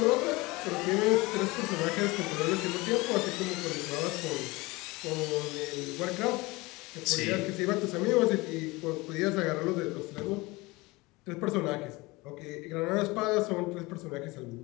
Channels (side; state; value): right; quieter; 22.8 dB